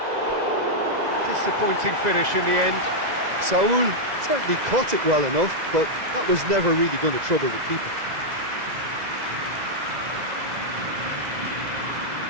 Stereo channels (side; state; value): left; late; 2.0 ms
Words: Disappointing finish in the end. Saul certainly caught it well enough, but that was never really going to trouble the keeper.